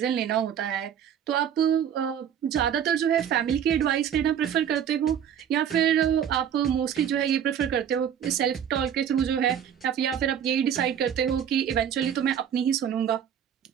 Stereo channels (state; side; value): quieter; left; 8.9 dB